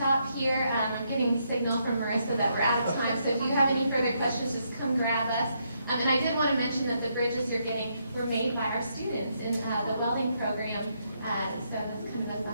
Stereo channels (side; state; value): both; inverted; correlation -0.77